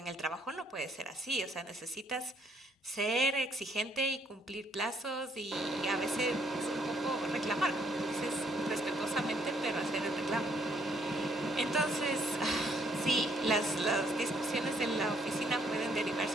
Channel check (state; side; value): normal; both; correlation 0.67